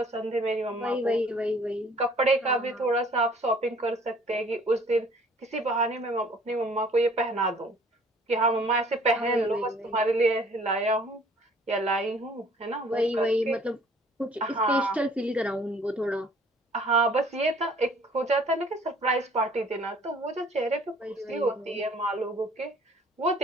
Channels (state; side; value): normal; both; correlation 0.55